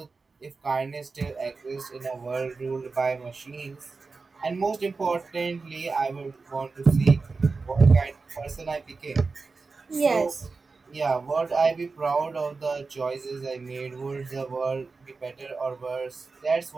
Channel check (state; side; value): quieter; left; 4.2 dB